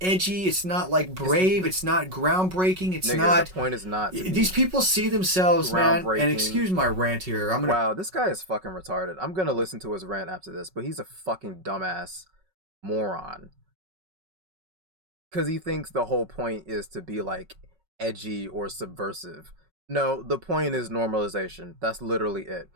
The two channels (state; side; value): late; left; 5.4 ms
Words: edgy. It's not like It's brave. It's not groundbreaking. It's nigga, not. the point is not to These be people see themselves, man. And groundbreaking. excuse my rant here. I'm gonna. Wow, this guy is fucking retarded. I'm gonna listen to his rant after this, but he's a fucking dumbass moron. Because he thinks the whole point is to be like edgy or subversive. No, the point is normalization. That's literally it.